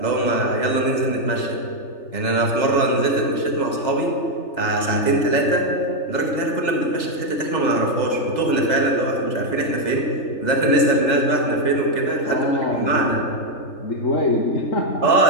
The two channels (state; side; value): late; right; 3.4 ms